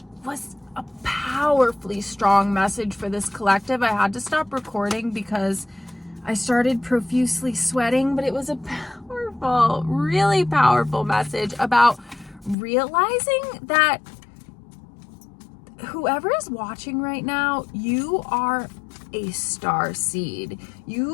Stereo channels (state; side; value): drops out; right; at 12.6 s